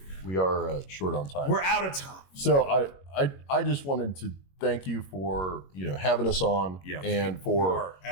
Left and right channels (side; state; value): right; late; 21 ms